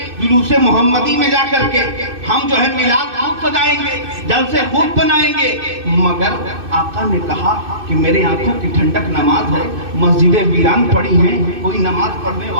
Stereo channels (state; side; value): late; left; 2.6 ms